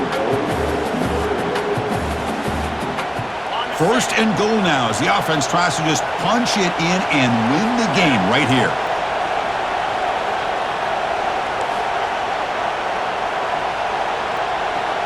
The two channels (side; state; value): both; identical; correlation 1.00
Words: First and goal now as the offense tries to just punch it in and win the game right here.